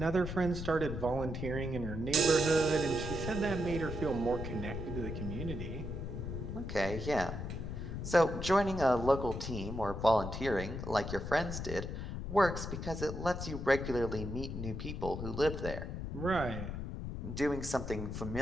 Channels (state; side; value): noise; left; rumble, 5 dB below the sound